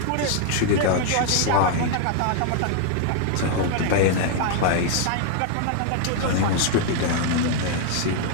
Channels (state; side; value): different; both; correlation -0.01